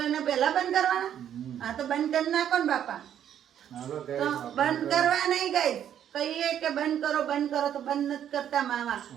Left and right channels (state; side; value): quieter; left; 9.9 dB